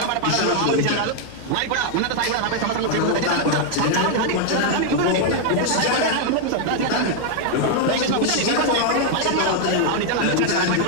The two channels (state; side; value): different; both; correlation 0.00